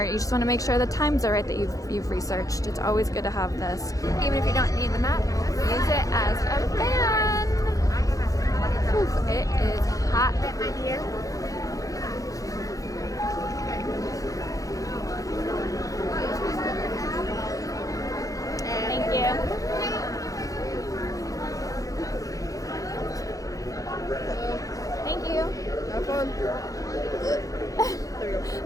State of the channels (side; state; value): right; late; 0.17 ms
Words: you just want to make sure the times are right that you've researched, it's always good to have this. Even if you don't need the map, use it as a fan. Oof, it is hot. Thank you. Thank you. Have fun. There you go.